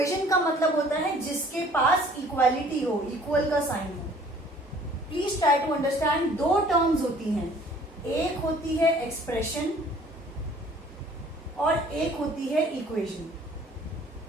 का मतलब होता है जिसके पास इक्वालिटी हो, इक्वल का साइन हो। Please try to understand. दो टर्म्स होती हैं, एक होती है एक्सप्रेशन और एक होती है इक्वेशन।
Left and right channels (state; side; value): normal; both; correlation 0.54